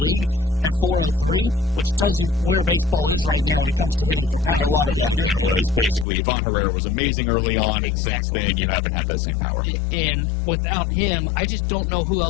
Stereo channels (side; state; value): right; drops out; at 6.1 s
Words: at 403, which tells you where baseball is right now when it comes to hitting for power. And a lot of that, Nobody's again, was basically Ivan Herrera was amazing early on, and since Exactly. then you haven't had that same power. And without him, I just don't know who